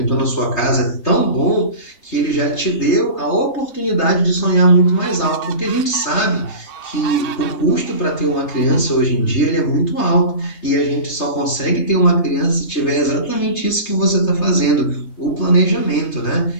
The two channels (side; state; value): right; late; 3.3 ms